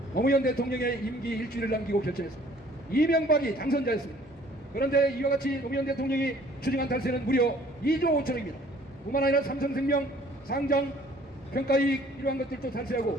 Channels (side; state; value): both; normal; correlation 0.56